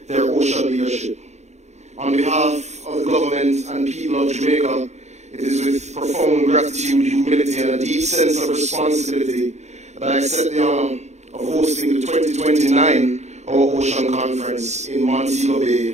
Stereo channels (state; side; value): late; left; 0.33 ms